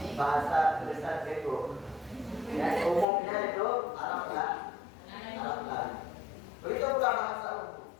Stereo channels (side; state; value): right; drops out; at 3.1 s